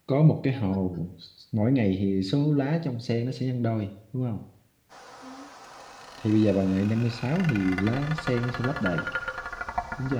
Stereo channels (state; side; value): identical; both; correlation 1.00